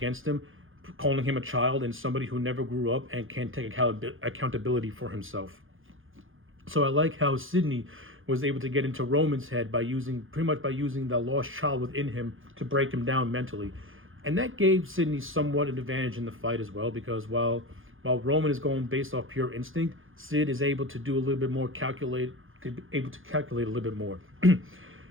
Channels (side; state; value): left; late; 0.59 ms